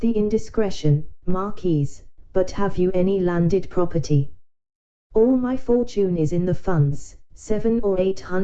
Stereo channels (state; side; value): identical; both; correlation 1.00